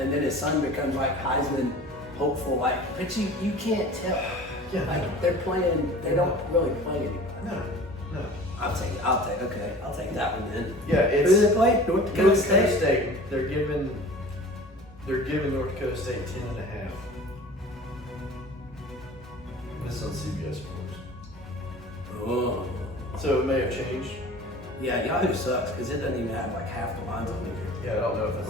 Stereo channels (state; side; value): normal; both; correlation 0.42